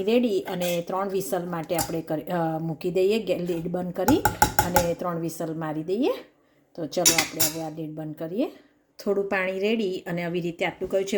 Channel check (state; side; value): identical; both; correlation 1.00